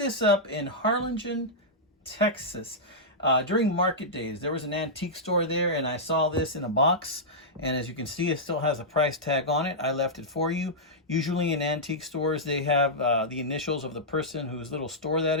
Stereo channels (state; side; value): normal; both; correlation -0.11